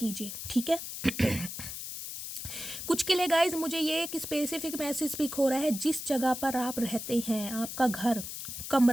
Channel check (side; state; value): left; noise; hiss, 8 dB below the sound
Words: ठीक है। कुछ के लिए गाइज मुझे ये एक स्पेसिफिक मैसेज पिक हो रहा है, जिस जगह पर आप रहते हैं, आपका घर,